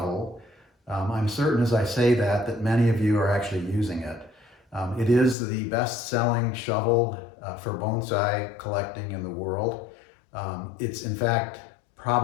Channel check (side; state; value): right; drops out; at 5.4 s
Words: I'm certain as I say that many of you are actually using it. It is the best-selling shovel for bonsai collecting in the world. It's in fact